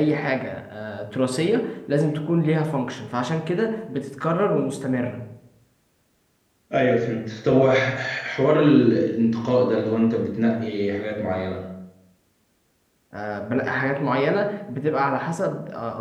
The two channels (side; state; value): both; identical; correlation 1.00